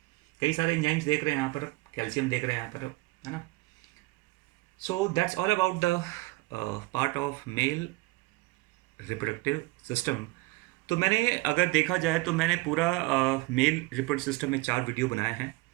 कई सारे एंजाइम्स देख रहे हैं यहाँ पर, कैल्शियम देख रहे हैं यहाँ पर, है ना। So that's all about the part of male reproductive system. तो मैंने अगर देखा जाए तो मैंने पूरा मेल रिप्रोडक्टिव सिस्टम में 4 वीडियो बनाए हैं।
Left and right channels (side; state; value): left; quieter; 21.7 dB